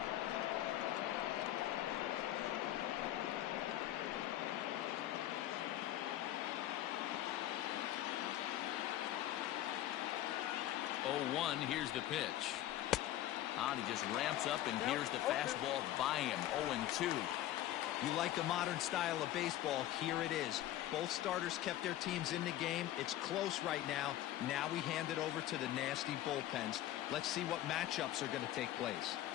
Oh, 1. Here's the pitch. He just ramps up, and here's the fastball by him. 0-2. You like the modern style of baseball, here it is. Both starters kept their teams in the game. It's close right now. Now we hand it over to the nasty bullpens. Let's see what matchups are going to take place.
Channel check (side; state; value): right; quieter; 13.6 dB